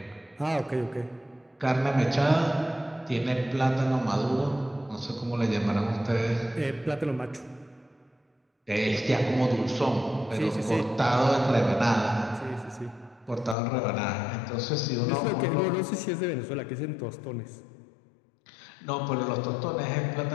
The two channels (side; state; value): right; drops out; at 13.6 s